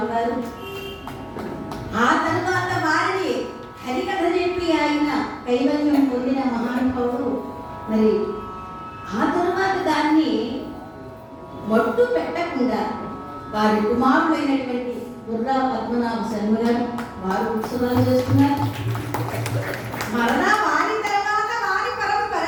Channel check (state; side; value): identical; both; correlation 1.00